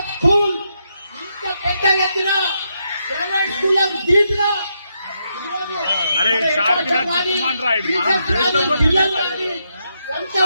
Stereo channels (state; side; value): inverted; both; correlation -0.81